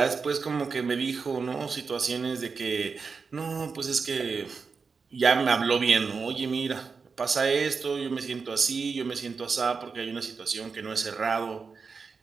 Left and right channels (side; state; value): left; quieter; 5.1 dB